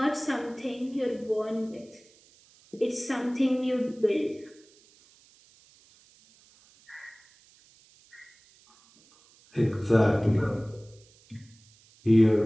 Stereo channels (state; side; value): noise; right; hiss, 29 dB below the sound